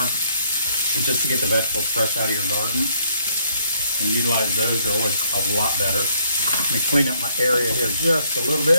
And just to get the vegetables fresh out of your garden and utilize those are always a lot better. Let me clean up my area here just a little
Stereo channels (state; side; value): inverted; both; correlation -0.68